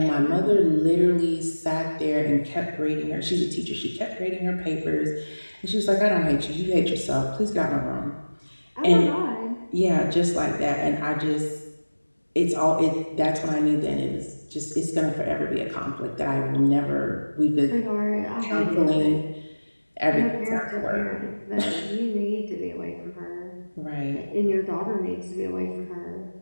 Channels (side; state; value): both; inverted; correlation -1.00